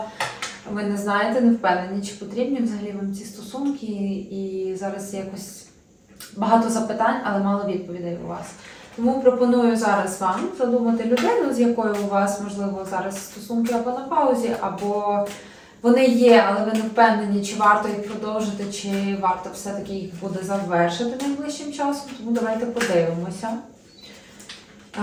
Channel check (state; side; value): identical; both; correlation 1.00